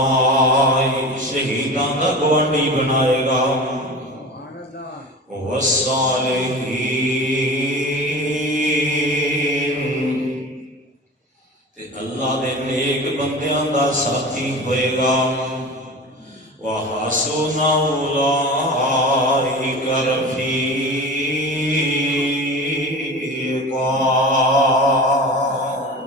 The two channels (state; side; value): normal; both; correlation 0.34